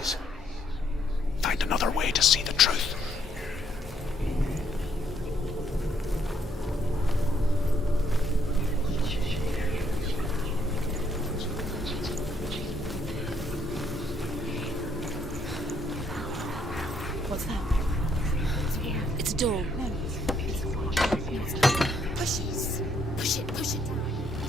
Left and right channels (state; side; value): normal; both; correlation 0.70